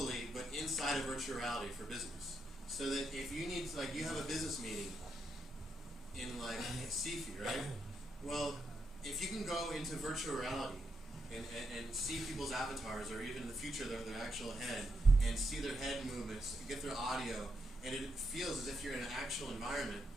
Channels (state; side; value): normal; both; correlation 0.82